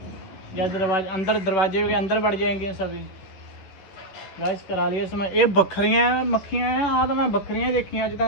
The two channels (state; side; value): late; right; 11 ms